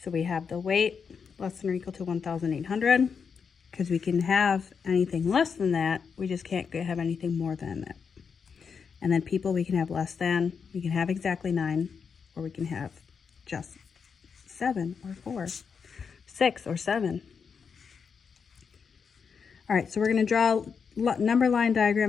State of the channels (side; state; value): right; quieter; 6.1 dB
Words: So we have the weight less than or equal to 1,800, because we can have anything less than that, we just can't have anything more than that. And then people, we can have less than, we can have exactly 9, or we can have just 7 or 4, 6 or 7. All right, so we're going to draw a number line